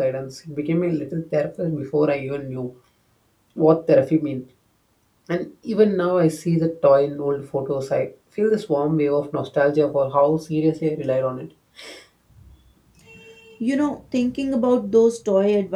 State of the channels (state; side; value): identical; both; correlation 1.00